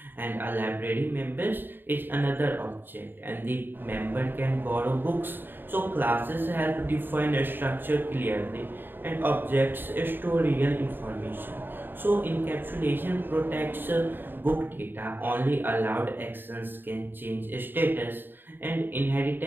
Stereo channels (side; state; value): left; late; 0.095 ms